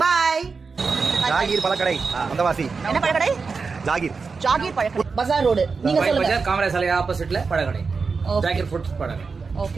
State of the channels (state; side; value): quieter; left; 4.8 dB